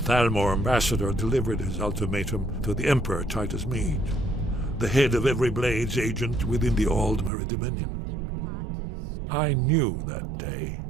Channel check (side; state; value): left; drops out; at 7.3 s